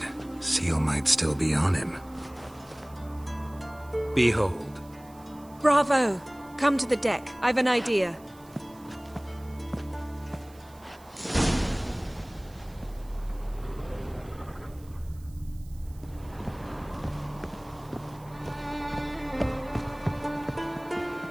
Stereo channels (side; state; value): right; noise; hiss, 26 dB below the sound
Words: Seal might still be on him. Behold. Bravo! Come to the deck. I've an idea.